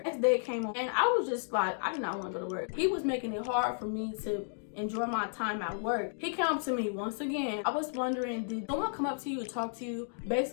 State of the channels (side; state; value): right; silent; digital silence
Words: Next day came on and I was just like, I did not want to go to work. He was making it hard for me to enjoy my time at work. He came up to me once again. I was wondering, did someone come up to you and talk to you?